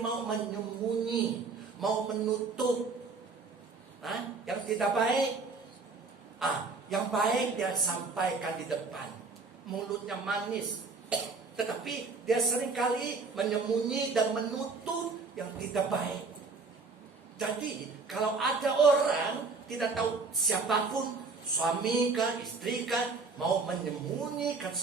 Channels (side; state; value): left; quieter; 4.2 dB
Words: mau menyembunyi, mau menutup yang tidak baik. Yang baik dia sampaikan di depan, mulutnya manis, tetapi dia seringkali menyembunyi dan menutup yang tidak baik. Jadi kalau ada orang tidak tahu siapapun, suami kah, istri kah, mau menyembunyikan